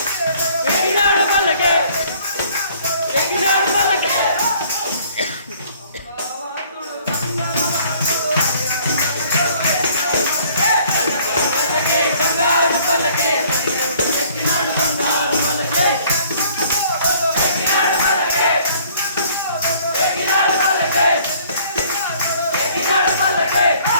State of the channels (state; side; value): inverted; both; correlation -0.58